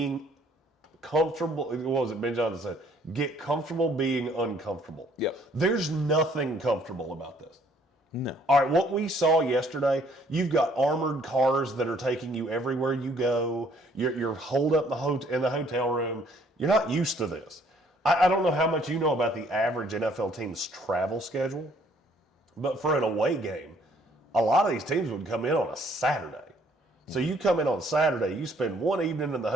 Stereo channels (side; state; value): both; normal; correlation 0.62